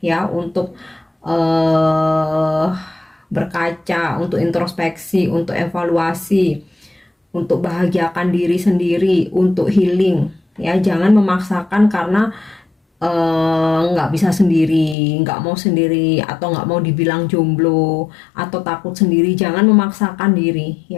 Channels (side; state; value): right; drops out; at 15.0 s